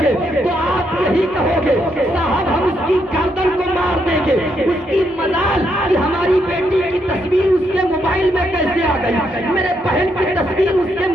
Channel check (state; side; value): normal; both; correlation 0.77